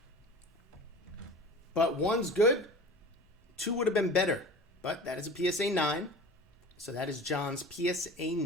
But one's good. 2 would have been better. But that is a PSA 9. So that is John's PSA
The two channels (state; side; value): normal; both; correlation 0.38